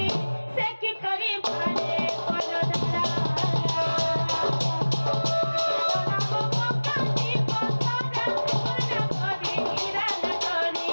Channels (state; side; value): inverted; both; correlation -1.00